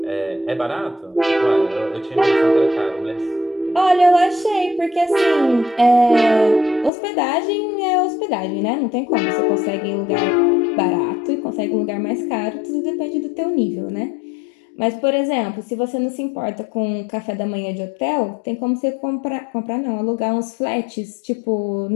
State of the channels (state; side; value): drops out; right; at 6.9 s